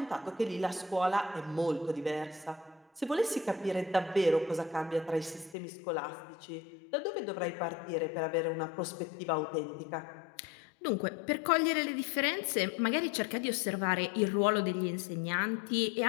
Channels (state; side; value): drops out; right; at 5.6 s